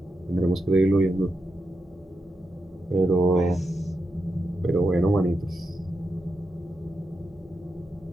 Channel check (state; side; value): normal; both; correlation 0.86